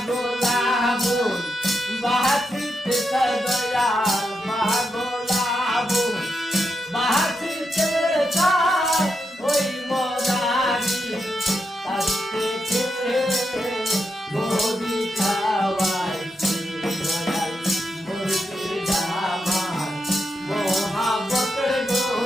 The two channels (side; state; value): both; normal; correlation 0.84